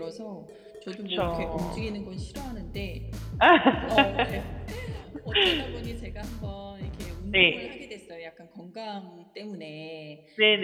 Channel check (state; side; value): identical; both; correlation 1.00